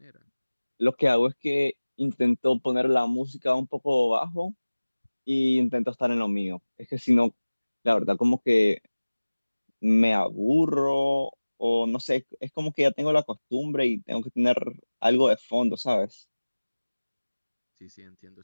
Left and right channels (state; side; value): inverted; both; correlation -1.00